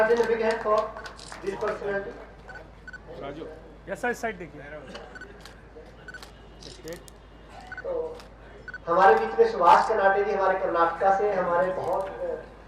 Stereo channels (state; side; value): identical; both; correlation 1.00